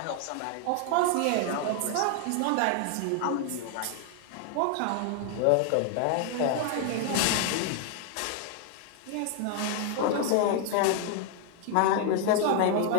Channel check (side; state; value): both; different; correlation 0.00